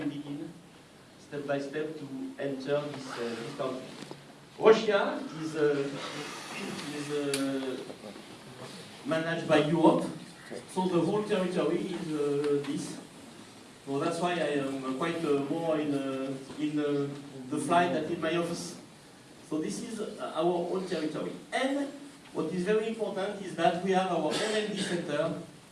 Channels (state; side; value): identical; both; correlation 1.00